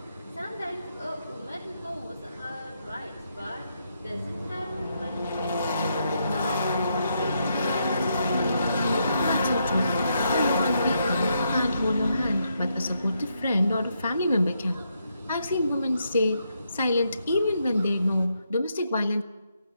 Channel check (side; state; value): both; inverted; correlation -0.79